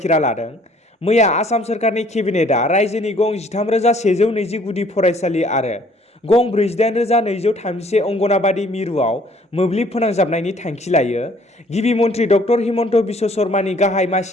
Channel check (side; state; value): both; normal; correlation 0.59